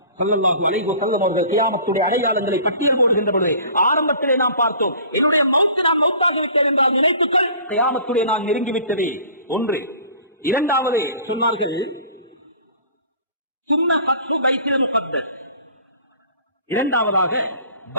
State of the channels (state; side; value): inverted; both; correlation -0.46